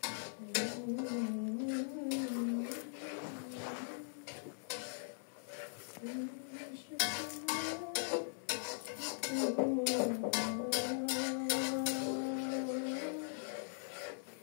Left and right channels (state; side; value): silent; right; 51 dB below the other